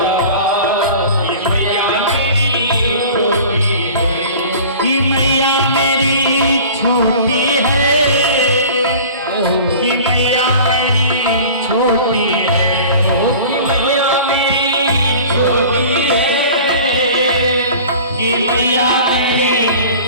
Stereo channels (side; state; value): both; inverted; correlation -0.41